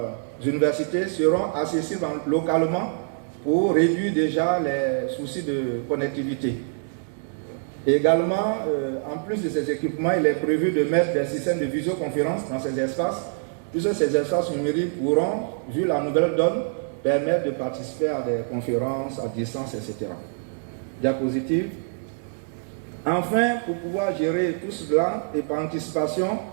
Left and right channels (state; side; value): silent; left; digital silence